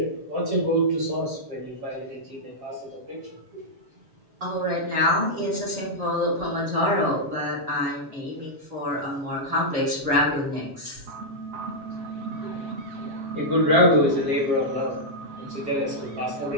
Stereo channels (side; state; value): left; late; 7.4 ms